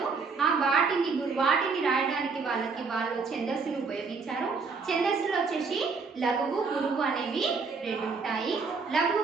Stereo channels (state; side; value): quieter; left; 4.8 dB